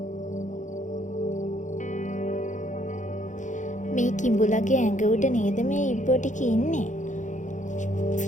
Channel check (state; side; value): late; right; 0.36 ms